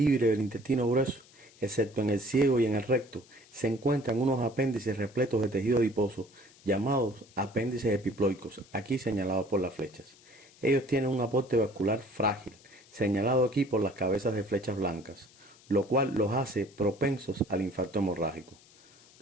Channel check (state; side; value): noise; left; hiss, 26 dB below the sound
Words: del intestino grueso, excepto en el ciego y en el recto, se encuentran unos apéndices repletos de tejido adiposo, llamados apéndices epiploicos, aquí señalados por las flechas. Ellos tienen un aporte vascular frágil, señalado aquí por las cabezas de flechas blancas, lo cual los hace propensos al infarto hemorrágico.